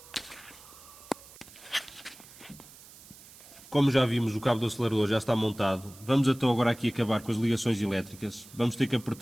Como já vimos, o cabo do acelerador já está montado. Vamos então agora aqui acabar com as ligações elétricas. Vamos ter que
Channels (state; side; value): noise; right; hiss, 20 dB below the sound